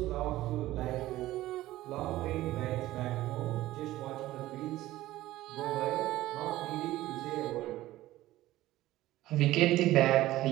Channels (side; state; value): left; quieter; 16.0 dB